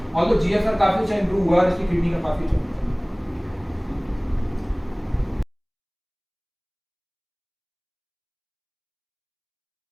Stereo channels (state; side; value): identical; both; correlation 1.00